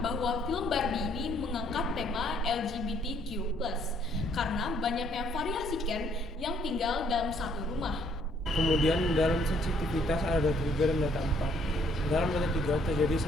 bahwa film Barbie ini mengangkat tema LGBTQ+, karena banyaknya variasi Ken yang tinggal dalam satu rumah. Kemudian dalam sensitivitas ada data 3 dan data 4. Dalam data 3 terjadi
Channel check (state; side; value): normal; both; correlation 0.66